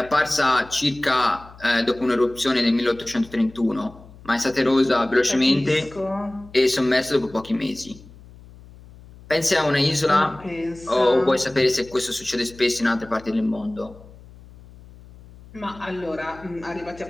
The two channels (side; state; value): left; noise; hum, 21 dB below the sound